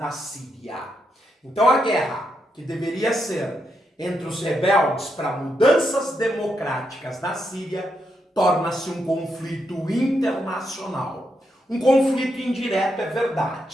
Síria. Então a guerra, que deveria ser entre os rebeldes para mudanças democráticas na Síria, torna-se um conflito internacional. Um conflito indireto, é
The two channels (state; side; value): normal; both; correlation 0.82